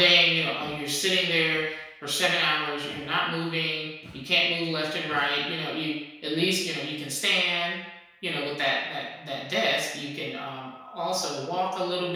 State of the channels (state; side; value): identical; both; correlation 1.00